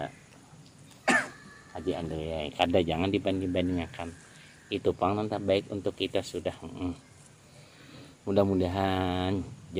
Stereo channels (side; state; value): both; identical; correlation 1.00